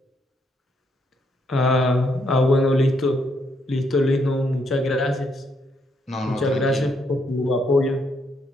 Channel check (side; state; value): both; normal; correlation 0.75